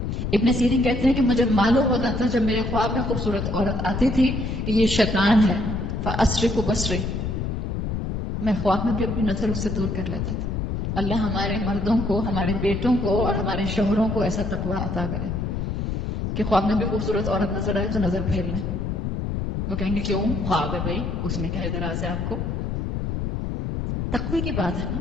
ابن سیرین کہتے ہیں کہ مجھے معلوم ہوتا تھا جب میرے خواب میں خوبصورت عورت آتی تھی کہ یہ شیطان ہے، فَأَسْرِفُ بَصْرِي، میں خواب میں بھی اپنی نظر اس سے دور کر لیتا تھا۔ اللہ ہمارے مردوں کو، ہمارے بیٹوں کو اور ہمارے شوہروں کو ایسا تقویٰ عطا کرے کہ خواب میں بھی خوبصورت عورت نظر آئے تو نظر پھیر لیں۔ وہ کہیں گے کیوں خواب ہے بھائی، اس میں کیا اعتراض ہے آپ کو؟ تقوی کی بات ہے نا،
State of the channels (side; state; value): left; noise; rumble, 2 dB below the sound